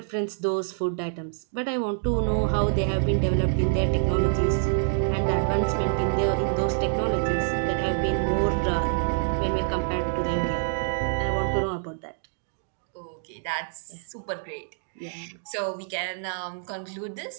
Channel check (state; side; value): silent; left; digital silence